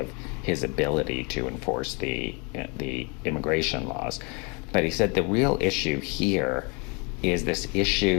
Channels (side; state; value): right; quieter; 31.9 dB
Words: his ability to enforce the immigration laws. But he said the real issue here is this